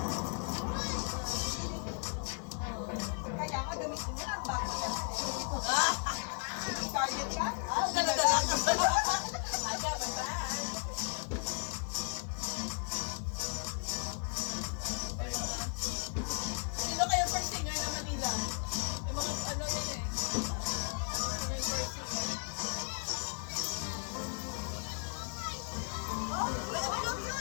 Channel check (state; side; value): quieter; right; 39.6 dB